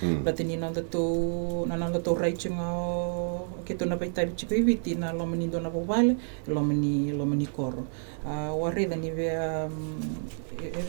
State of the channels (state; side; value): silent; left; 56 dB below the other